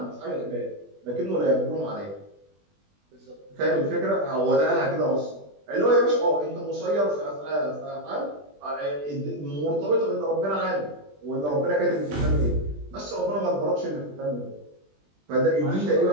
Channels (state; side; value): late; left; 20 ms